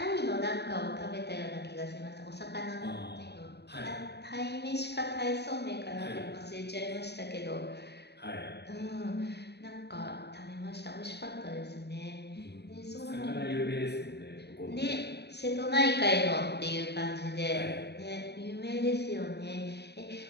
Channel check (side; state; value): right; late; 0.48 ms